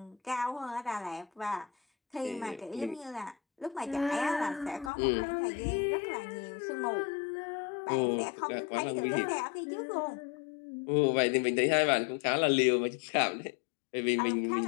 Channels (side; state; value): right; drops out; at 4.9 s